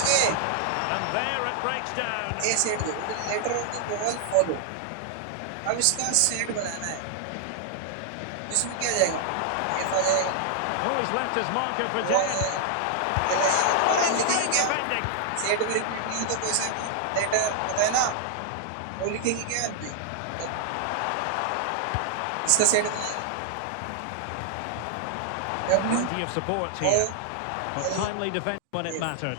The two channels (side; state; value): both; different; correlation 0.00